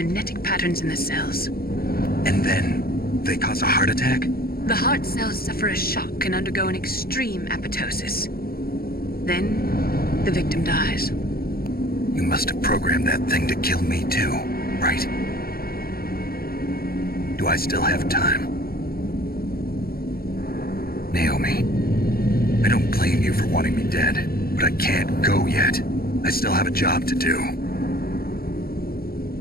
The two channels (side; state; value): right; late; 0.44 ms